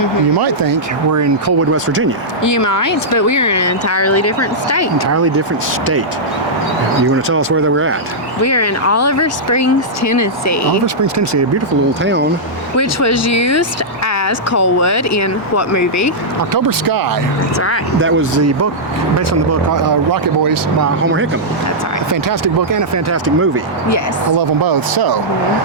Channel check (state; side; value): normal; both; correlation -0.10